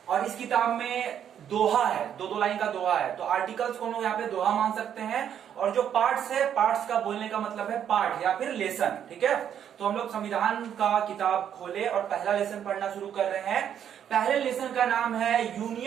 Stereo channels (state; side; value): quieter; left; 9.2 dB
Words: और इस किताब में दोहा है, दो लाइन का दोहा है, तो आर्टिकल्स को हम लोग यहाँ पे दोहा मान सकते हैं। और जो पार्ट्स है, पार्ट्स का बोलने का मतलब है पार्ट या फिर लेसन। ठीक है, तो हम लोग संविधान का किताब खोले और पहला लेसन पढ़ना शुरू कर रहे हैं। पहले लेसन का नाम है